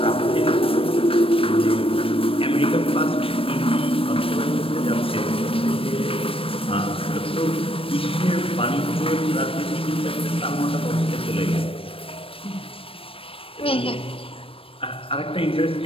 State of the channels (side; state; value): right; late; 0.27 ms